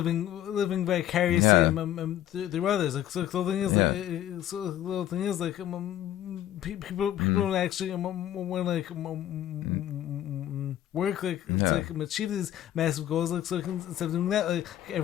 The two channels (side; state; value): right; quieter; 12.2 dB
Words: vicariously through others. Like so, the thing is, people don't actually want to like work to like achieve these massive goals. Like so, instead of doing that, like